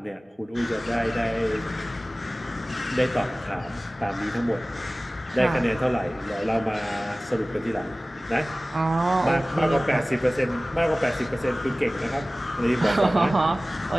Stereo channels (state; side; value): normal; both; correlation 0.98